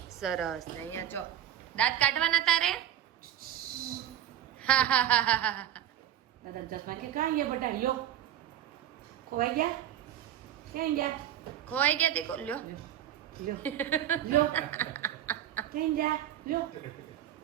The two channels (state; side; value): quieter; left; 11.3 dB